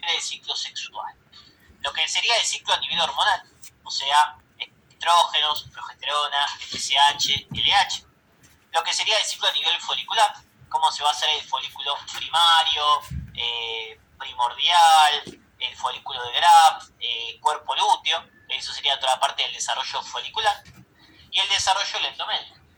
el ciclo sexual. Lo que sería el ciclo a nivel hormonal, o sea, estrógenos, progesterona, FSH, LH. Lo que sería el ciclo a nivel folicular, cómo se va a hacer el folículo primario, primordial, el folículo de Graf, cuerpo lúteo, eso sería toda la parte del desarrollo folicular, y el desarrollo del endometrio.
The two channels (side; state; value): both; identical; correlation 1.00